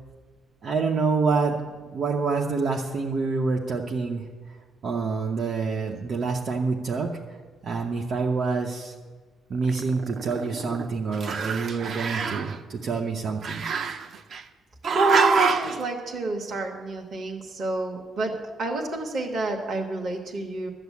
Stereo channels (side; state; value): left; quieter; 3.9 dB